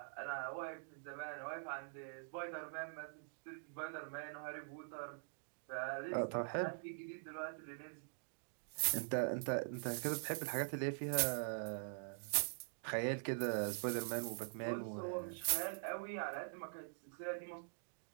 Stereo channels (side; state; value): left; silent; digital silence